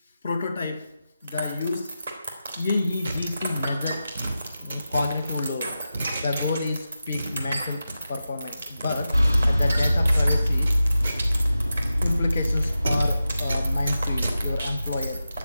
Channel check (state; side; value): inverted; both; correlation -0.92